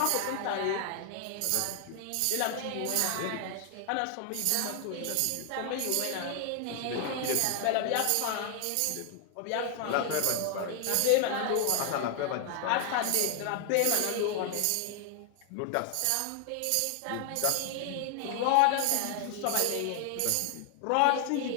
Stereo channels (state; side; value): different; both; correlation 0.00